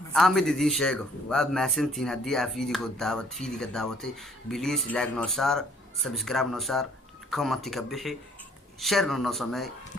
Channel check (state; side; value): normal; both; correlation 0.60